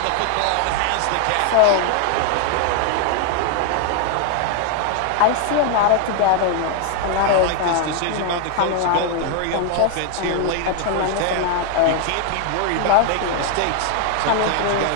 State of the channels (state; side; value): different; both; correlation 0.00